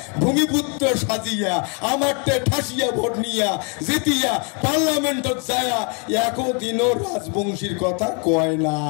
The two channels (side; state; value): right; quieter; 36.6 dB